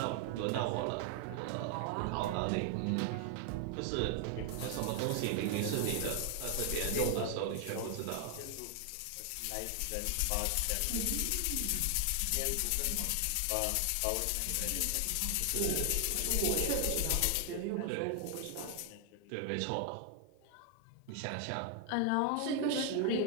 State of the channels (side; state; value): both; different; correlation 0.00